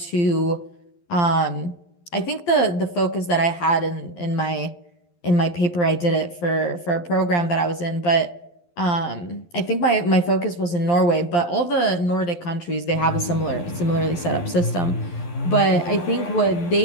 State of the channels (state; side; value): late; right; 12 ms